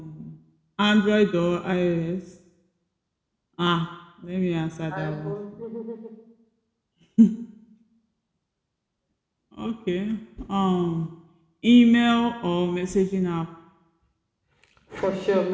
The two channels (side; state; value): both; identical; correlation 1.00